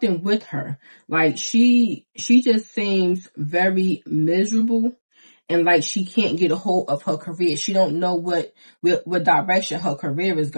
with her. She just seems very miserable. and like she can't get a hold of her career. She don't know what direction her career is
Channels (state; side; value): inverted; both; correlation -1.00